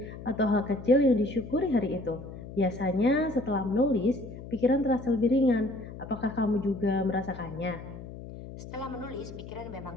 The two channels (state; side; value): noise; left; hum, 12 dB below the sound